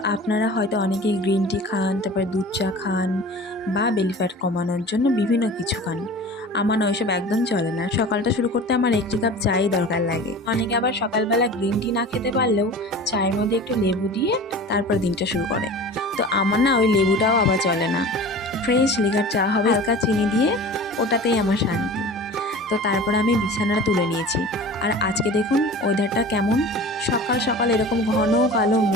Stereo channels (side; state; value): both; normal; correlation 0.38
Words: আপনারা হয়তো অনেকেই গ্রিন টি খান, তারপরে দুধ চা খান বা বেলি ফ্যাট কমানোর জন্য বিভিন্ন কিছু খান। আমার না ওইসব একদম চলে না। সকালটা শুরু করতে আমার 1 কাপ চাই দরকার লাগে। অনেকে আবার সকালবেলা গ্রিন টি না খেতে পারলেও চায়ের মধ্যে একটু লেবু দিয়ে তারপর দিনটা শুরু করে। তো আমার না ওই লেবুটাও আবার চলে না। ফ্রেশ লিকার চা হবে, হালকা চিনি দিয়ে, ওটাতেই আমার শান্তি। তো তারপর আমি বিছানাটা তুলে নিয়েছি। আর আজকে দেখুন ওয়েদারটা কেমন, সকাল সকাল এরকম ঘন কালো